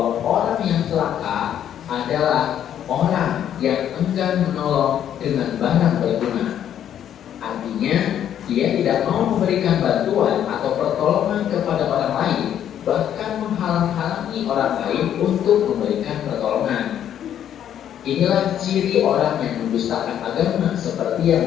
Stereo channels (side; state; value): right; quieter; 10.1 dB